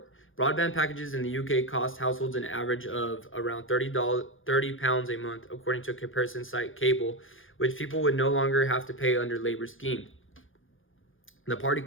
Broadband packages in the UK cost households an average of around £30 a month, according to a comparison site Cable, which people would no longer have to pay under Labour's scheme. The party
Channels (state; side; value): late; right; 0.59 ms